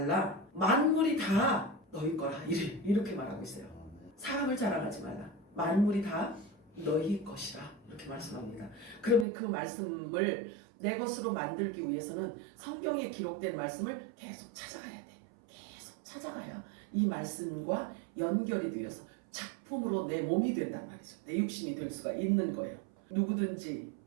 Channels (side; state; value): left; drops out; at 9.2 s